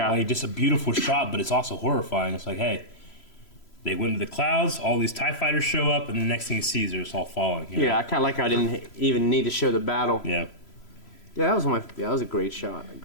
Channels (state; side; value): late; right; 3.0 ms